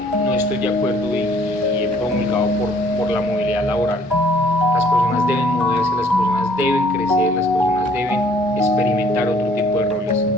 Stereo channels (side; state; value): both; normal; correlation 0.59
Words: no estoy de acuerdo y he promulgado por la movilidad laboral. Las personas deben moverse, las personas deben crecer, las personas deben experimentar otro tipo de roles,